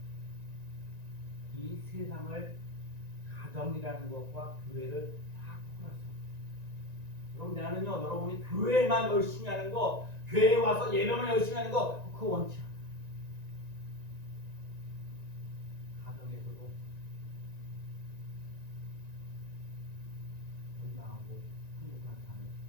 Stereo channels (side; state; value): left; late; 1.9 ms